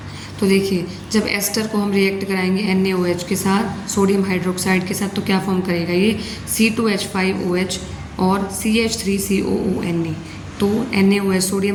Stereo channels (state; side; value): identical; both; correlation 1.00